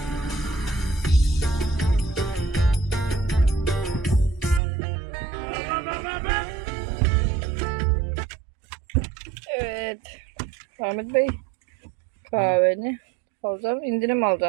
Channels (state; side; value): drops out; left; at 4.6 s